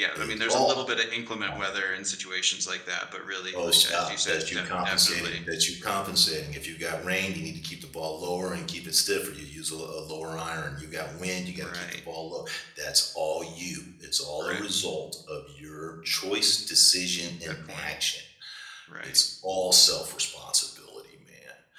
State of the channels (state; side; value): identical; both; correlation 1.00